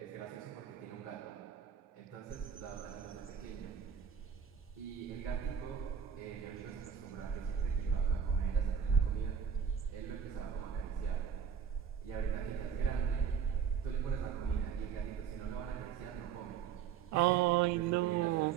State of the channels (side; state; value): left; quieter; 7.7 dB